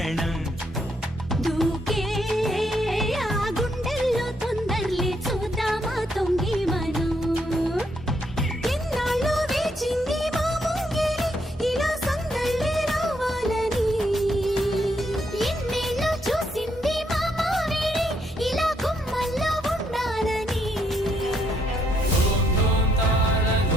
దూకే ఆ గుండెల్లో తొందరలే చూద్దామా తొంగి మనం ఎన్నాళ్ళు వేచింది మా ముంగిలి ఇలా సందళ్ళే రావాలని ఎన్నేళ్ళు చూసింది మా మావిడి ఇలా గుమ్మల్లో ఉండాలని ధూమ్ ధూమ్ తాన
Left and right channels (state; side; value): normal; both; correlation 0.74